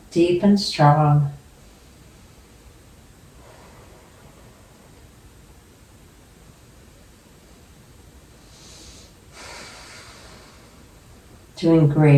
deep and strong. Doing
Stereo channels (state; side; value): identical; both; correlation 1.00